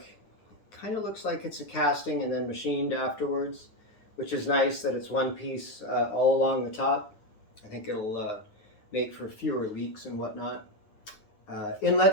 kind of looks like it's a casting and then machined afterwards, which is nice that it's one piece all along the top. I think it'll make for fewer leaks and whatnot.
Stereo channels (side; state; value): right; late; 9.5 ms